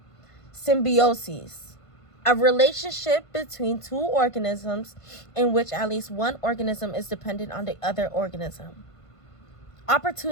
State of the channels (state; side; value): late; right; 1.5 ms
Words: Symbiosis, a relationship between two organisms in which at least one organism is dependent on the other organism.